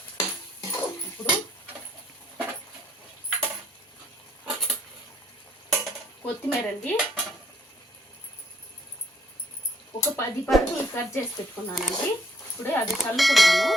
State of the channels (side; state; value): both; normal; correlation 0.67